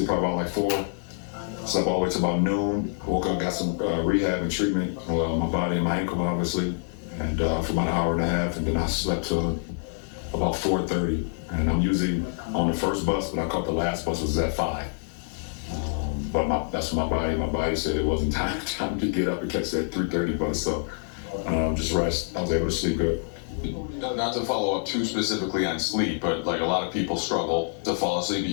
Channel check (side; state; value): right; silent; digital silence